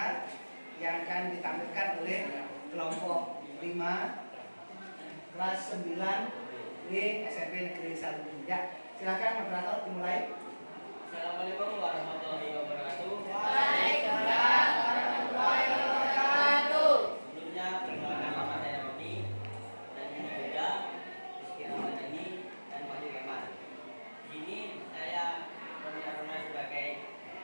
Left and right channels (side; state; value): both; inverted; correlation -1.00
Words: yang akan ditampilkan oleh kelompok 5 kelas 9 di SMP Negeri 1. Ya, silakan moderator dimulai. Assalamualaikum warahmatullahi wabarakatuh. Waalaikumsalam warahmatullahi wabarakatuh. Sebelumnya perkenalkan nama saya Roni dan ini Yuda, Rizky Ramadhani dan Wahyu Kemal. Di sini saya Roni Aruna sebagai